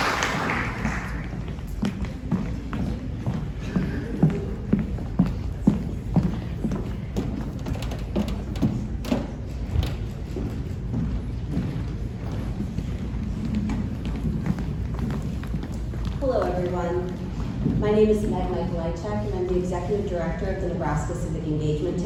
Hello, everyone. My name is Meg Michaelaichek, and I'm the Executive Director of the Nebraska Civic Engagement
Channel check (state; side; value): identical; both; correlation 1.00